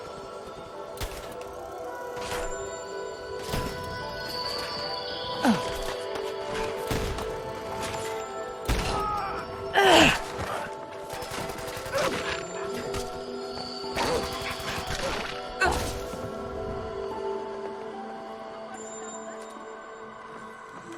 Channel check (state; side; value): identical; both; correlation 1.00